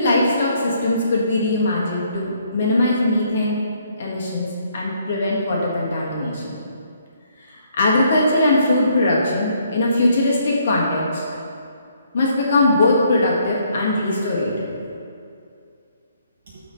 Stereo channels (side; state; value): both; inverted; correlation -0.68